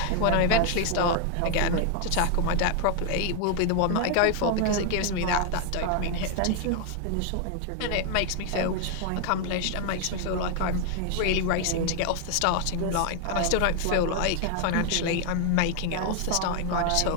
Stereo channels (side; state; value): both; different; correlation 0.00